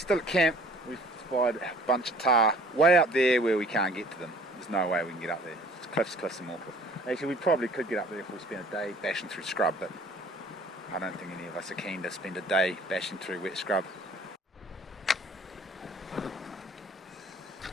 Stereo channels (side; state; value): both; normal; correlation 0.52